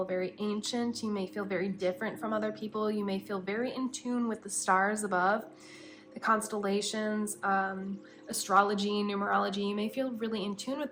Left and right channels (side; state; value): both; identical; correlation 1.00